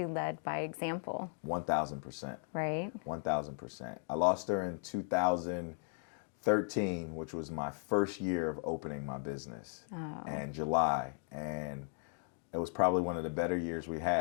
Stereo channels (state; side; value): silent; right; 53 dB below the other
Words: led by example. 1,000%. Right? 1,000%. I lost her in 2013, which was my first year of opening my business, in July. And it was probably one of the better years we